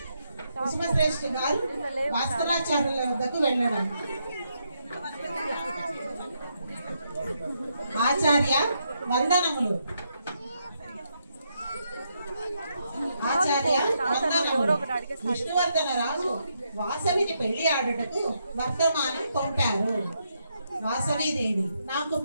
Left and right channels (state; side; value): inverted; both; correlation -0.79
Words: కుసుమశ్రేష్ఠి గారు భాస్కరాచార్యుల వద్దకు వెళ్ళడం. ఆచార్య వందనములు. ఆచార్య వందనములు. విష్ణువర్ధన రాజు వాసవిని పెళ్లి ఆడుటకు వర్తమానం పంపారు. వాసవీదేవి, నాకు